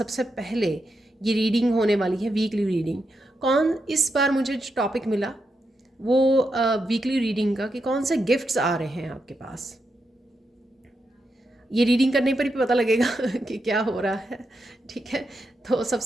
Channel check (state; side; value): normal; both; correlation 0.85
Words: पहले ये रीडिंग होने वाली है वीकली रीडिंग। इस बार मुझे जो टॉपिक मिला वो वीकली रीडिंग का कि कौन से गिफ्ट्स आ रहे हैं आपके पास। ये रीडिंग करने पर ही पता लगेगा कि क्या हो रहा है। ठीक है, तो